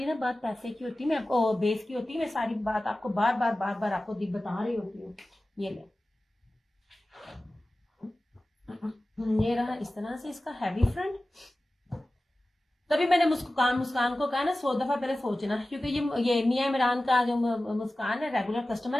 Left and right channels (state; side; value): normal; both; correlation 0.96